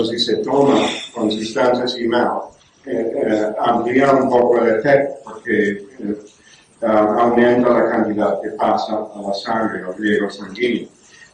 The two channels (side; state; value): both; identical; correlation 1.00